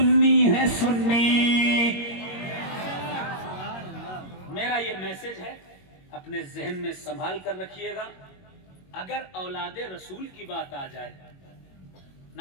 ہیں، سنی۔ میرا یہ میسج ہے، اپنے ذہن میں سنبھال کر رکھیے گا۔ اگر اولاد رسول کی بات آ جائے،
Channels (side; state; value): right; late; 22 ms